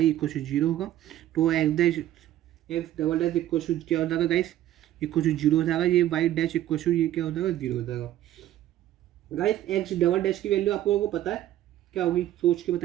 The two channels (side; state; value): left; quieter; 13.0 dB